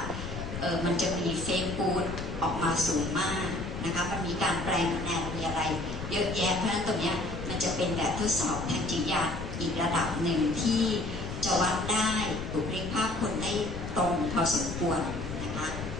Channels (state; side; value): noise; left; rumble, 7 dB below the sound